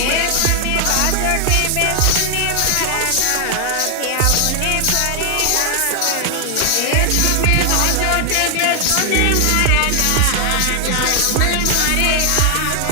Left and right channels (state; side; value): different; both; correlation 0.00